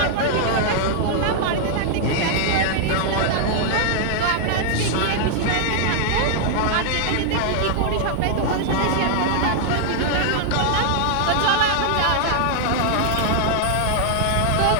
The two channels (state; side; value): different; both; correlation 0.00